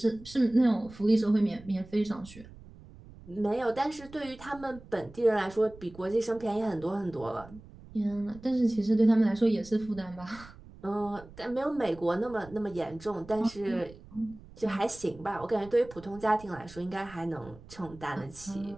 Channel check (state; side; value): noise; right; rumble, 20 dB below the sound